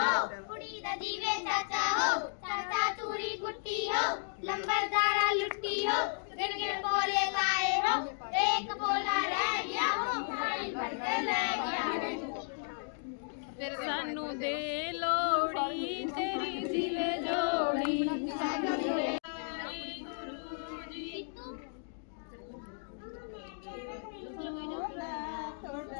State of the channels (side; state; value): right; silent; digital silence